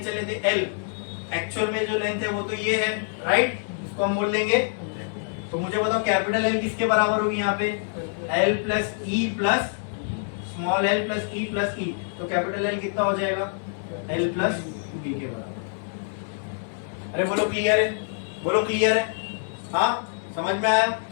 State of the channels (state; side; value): silent; right; digital silence